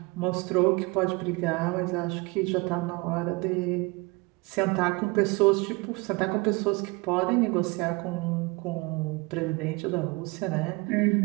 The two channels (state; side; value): quieter; left; 26.0 dB